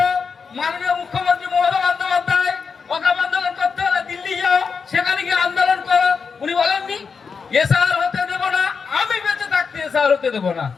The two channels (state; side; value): quieter; right; 5.5 dB